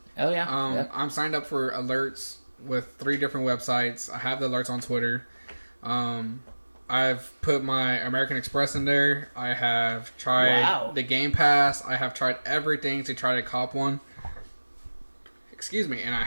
Oh yeah. Yep. I'm signed up for alerts with 3 different websites. I have the alerts on Twitter. I've put my American Express in there. I have tried the Game Pass. I have tried everything to try to cop one. Excuse me, and I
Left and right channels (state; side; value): inverted; both; correlation -1.00